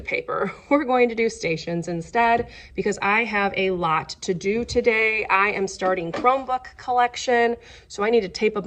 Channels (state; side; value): identical; both; correlation 1.00